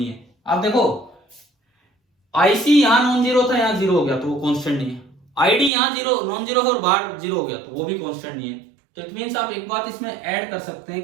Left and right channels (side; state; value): left; drops out; at 5.7 s